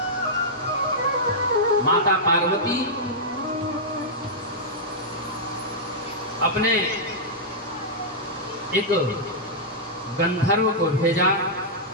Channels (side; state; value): both; normal; correlation -0.10